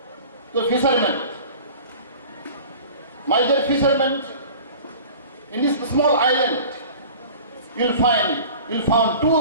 to the fishermen, my dear fishermen, in this small island you'll find 2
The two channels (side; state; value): both; inverted; correlation -0.42